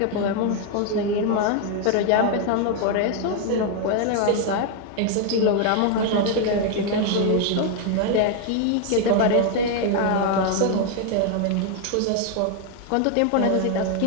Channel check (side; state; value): both; different; correlation 0.01